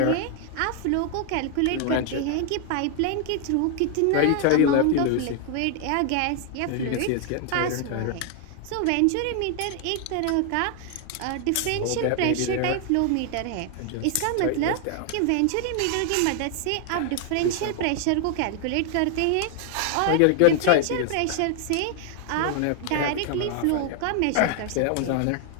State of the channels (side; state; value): both; different; correlation 0.00